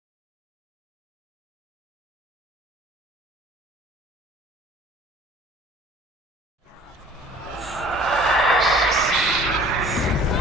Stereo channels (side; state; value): both; normal; correlation 0.50